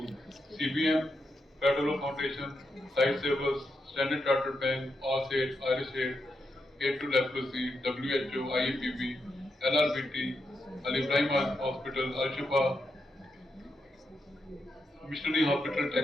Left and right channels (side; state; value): both; normal; correlation 0.84